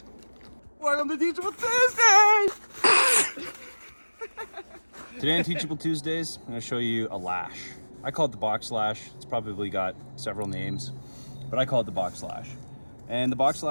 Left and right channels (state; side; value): inverted; both; correlation -1.00